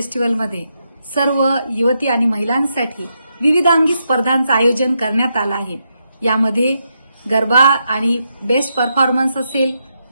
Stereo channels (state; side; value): inverted; both; correlation -0.82